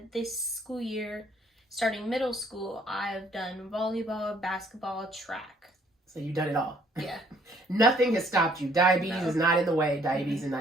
this school year, starting middle school, I've done volleyball, basketball, track. So you've done it all. Yeah. Nothing has stopped you. Diabetes is not in the way. Diabetes is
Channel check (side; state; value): both; normal; correlation 0.63